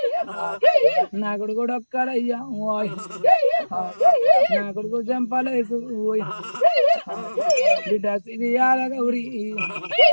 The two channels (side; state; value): both; inverted; correlation -1.00